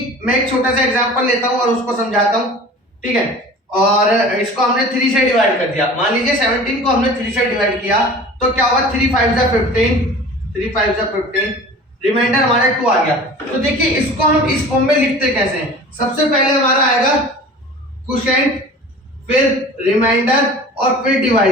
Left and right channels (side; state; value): both; normal; correlation 0.41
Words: मैं एक छोटा सा एग्जांपल लेता हूं और उसको समझाता हूं। ठीक है, और इसको हमने 3 से डिवाइड कर दिया। मान लीजिए 17 को हमने 3 से डिवाइड किया तो क्या होगा, 3 5 जा 15, 3 5 जा 15, रिमाइंडर हमारा 2 आ गया। तो देखिए, इसको हम इस फॉर्म में लिखते कैसे हैं। सबसे पहले हमारा आएगा क्वोशिएंट, फिर रिमाइंडर और फिर